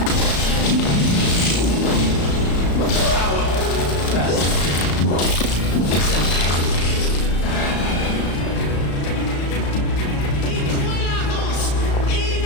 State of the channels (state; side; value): late; right; 35 ms